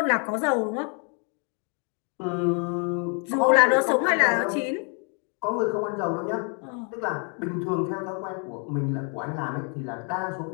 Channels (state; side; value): quieter; right; 39.4 dB